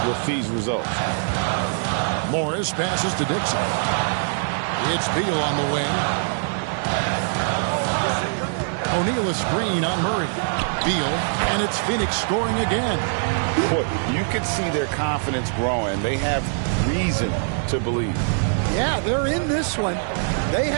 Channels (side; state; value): left; silent; 63 dB below the other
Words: with these results. Morris passes to Dixon. It's Beal on the wing. O'Neal a screen on Murray. Beal, and it's Phoenix scoring again. Boy, you can see their confidence growing. They have reason to believe. Yeah, they're in this one. They